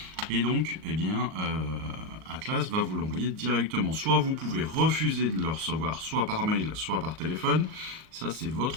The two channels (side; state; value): left; late; 37 ms